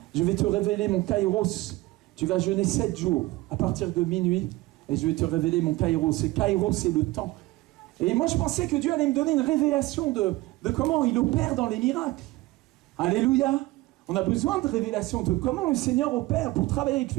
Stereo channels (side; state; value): left; quieter; 19.6 dB